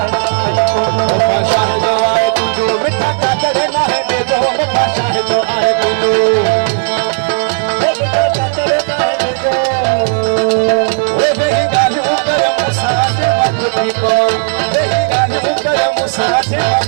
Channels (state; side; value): silent; left; digital silence